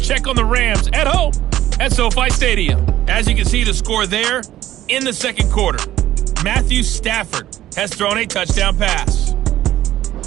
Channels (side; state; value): left; quieter; 13.5 dB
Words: on the Rams at home at SoFi Stadium. As you can see, the score there in the second quarter. Matthew Stafford has thrown a touchdown pass.